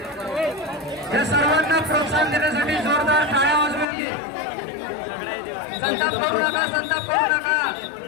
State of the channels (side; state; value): right; drops out; at 3.9 s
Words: या सर्वांना प्रोत्साहन देण्यासाठी जोरदार टाळ्या वाजवून घे। संताप करू नका, संताप करू नका।